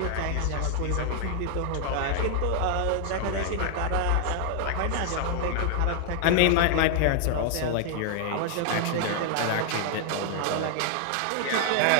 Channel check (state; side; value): different; both; correlation 0.00